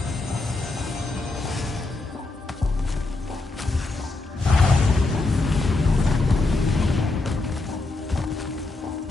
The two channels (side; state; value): right; quieter; 3.2 dB